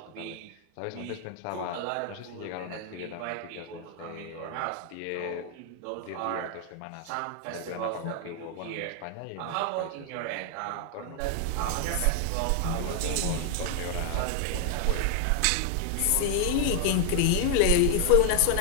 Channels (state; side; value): different; both; correlation 0.00